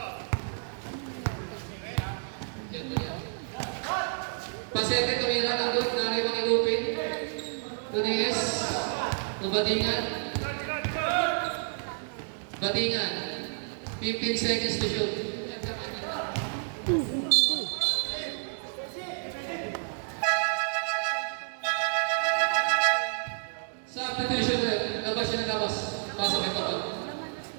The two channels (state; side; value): silent; left; digital silence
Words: Pasete tumira ng good. Nari mo ni Lupin. To DS. Batingan. 15 seconds to shoot. Substitution ulit. Labas siya na labas. Pasok may kapal.